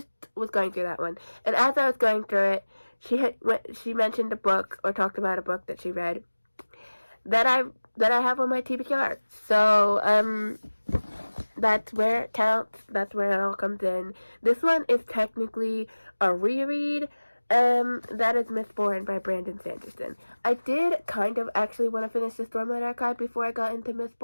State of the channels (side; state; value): both; inverted; correlation -1.00